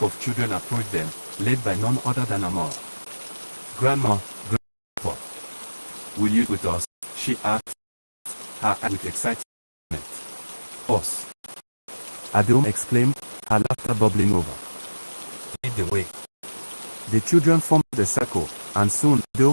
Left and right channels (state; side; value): inverted; both; correlation -1.00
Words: of children approached them, led by none other than Amor. Grandma, Grandpa, will you with us? She asked, her eyes with excitement. Us. Adeoma exclaimed, her laughter bubbling over. Lead the way. The children formed the circle, and soon